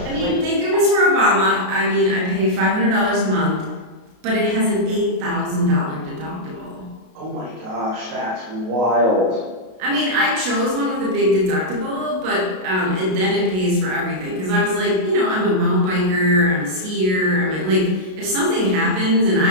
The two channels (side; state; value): left; late; 33 ms